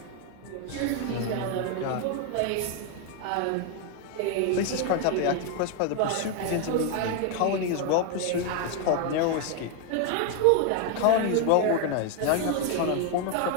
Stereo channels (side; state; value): both; different; correlation 0.01